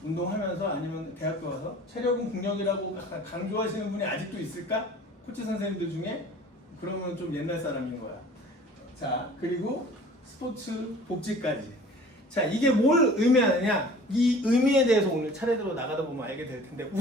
운동하면서 아니면 대학교 와서 체력은 국력이라고 강조하시는 분이 아직도 있을까? 코치 선생님들 중에? 그러면 좀 옛날 사람인 거야. 자, 그리고 스포츠 복지까지. 자, 이게 뭘 의미하느냐? 이 의미에 대해서 오늘 차례대로 나가다 보면 알게 될 텐데,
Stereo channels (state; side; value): normal; both; correlation 0.46